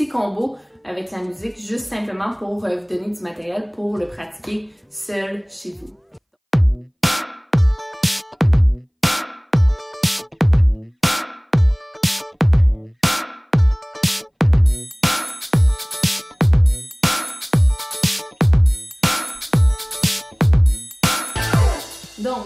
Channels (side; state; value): both; identical; correlation 1.00